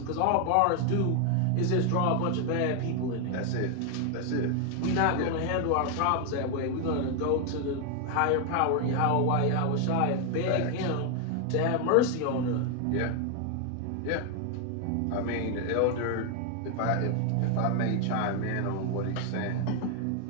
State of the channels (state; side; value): different; both; correlation 0.01